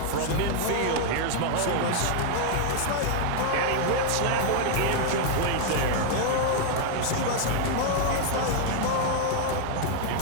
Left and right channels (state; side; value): different; both; correlation 0.00